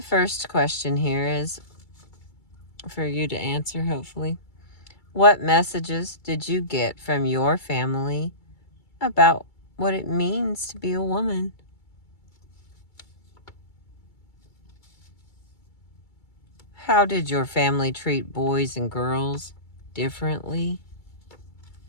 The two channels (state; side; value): late; right; 2.3 ms